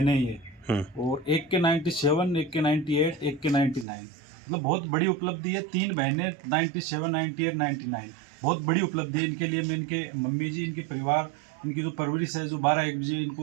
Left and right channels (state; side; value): drops out; left; at 3.9 s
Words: ये, और एक के 97, एक के 98, एक के 99, मतलब बहुत बड़ी उपलब्धि है। 3 बहनें 97, 98, 99, बहुत बड़ी उपलब्धि है इनके लिए। मैं इनके मम्मी जी, इनके परिवार, इनकी जो परवरिश है, जो 12-1 बजे